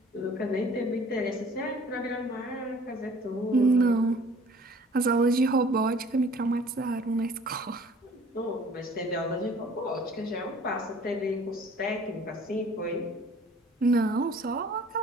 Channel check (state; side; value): normal; both; correlation 0.52